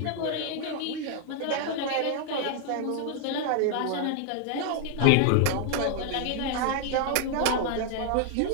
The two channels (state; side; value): different; both; correlation 0.00